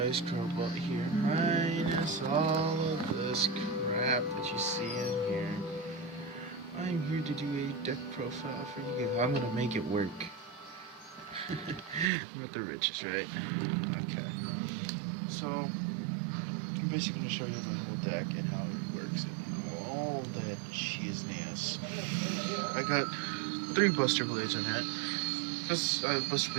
Crowbot here. Minus all of this crap that you see in here. I'm here to do a deck profile for you guys. I'm gonna make it work. I'm with the riches, right? Okay. So, I'm basically gonna show you the whole deck and how it works and all that shizness. I got 3 Buster Blades in it. Because Buster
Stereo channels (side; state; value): left; drops out; at 12.1 s